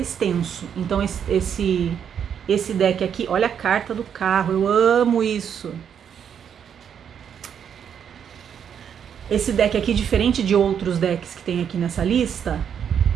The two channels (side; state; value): left; quieter; 8.2 dB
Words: Então esse Esse deck aqui, olha a carta do carro, eu amo isso. Esse deck aqui, diferente de outros decks que tem aqui nessa lista,